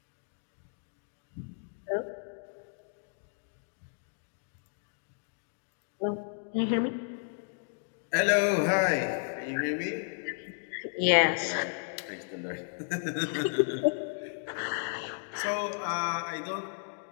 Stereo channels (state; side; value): silent; right; digital silence